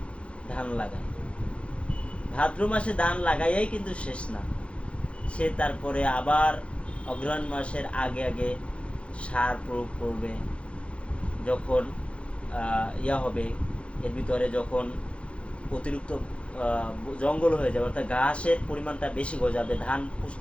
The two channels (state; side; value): late; right; 0.060 ms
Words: ধান লাগায়। ভাদ্র মাসে ধান লাগাইয়াই কিন্তু শেষ না, সে তারপরে আবার অগ্রহায়ণ মাসের আগে আগে সার প্রয়োগ করবে। যখন হবে, এর ভিতরে যখন অতিরিক্ত জঙ্গল হয়ে যাবে অর্থাৎ ঘাসের পরিমাণটা বেশি গজাবে, ধান